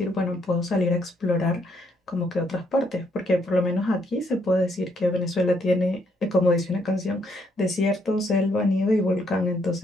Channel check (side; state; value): both; normal; correlation 0.72